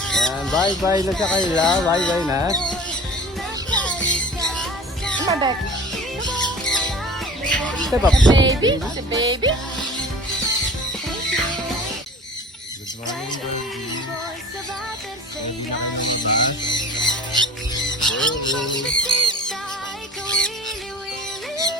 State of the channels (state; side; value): normal; both; correlation 0.42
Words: Bye-bye na sa kanila. Bye-bye na. Mabek. Step up. Baby? Si baby? Good morning,